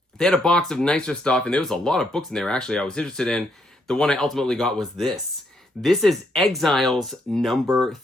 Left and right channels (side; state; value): both; normal; correlation 0.74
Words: they had a box of nicer stuff, and there was a lot of books in there, actually, I was interested in. The one I ultimately got was this. This is Exiles number